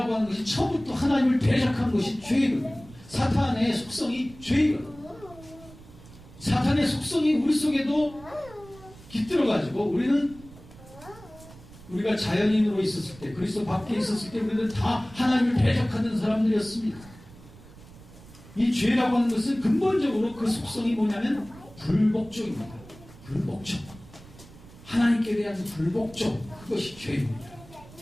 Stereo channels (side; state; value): right; noise; rumble, 20 dB below the sound